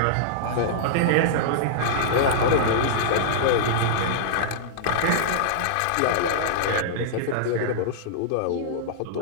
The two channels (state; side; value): different; both; correlation -0.02